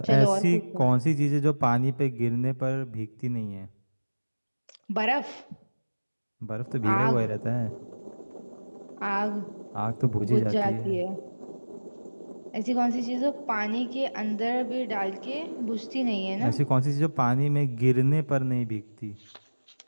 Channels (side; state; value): both; inverted; correlation -1.00